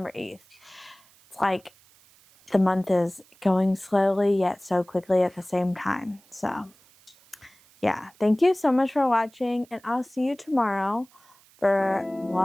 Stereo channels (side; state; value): right; noise; hiss, 29 dB below the sound